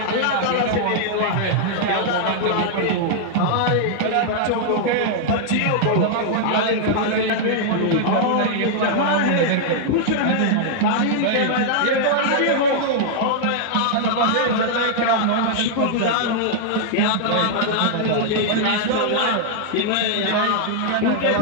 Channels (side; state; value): both; different; correlation -0.01